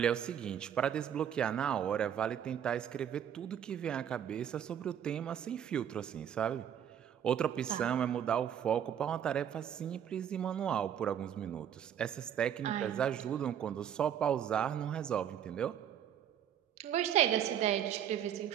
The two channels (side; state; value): left; quieter; 9.3 dB